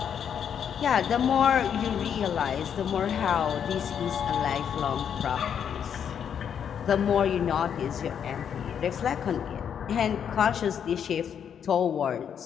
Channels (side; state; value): right; quieter; 8.2 dB